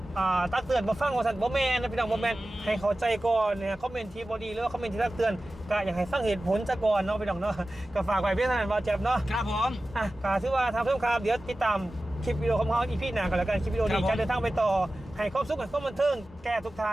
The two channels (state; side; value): normal; both; correlation 0.95